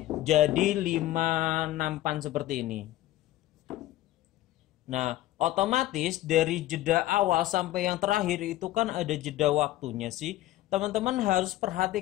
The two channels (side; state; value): right; quieter; 15.3 dB